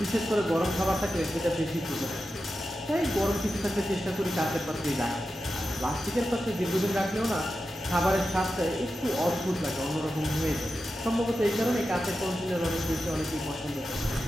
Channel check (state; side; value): normal; both; correlation 0.91